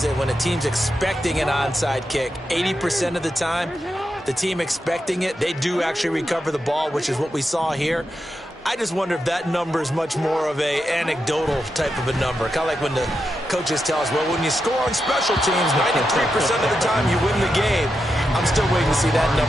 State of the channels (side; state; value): both; normal; correlation 0.87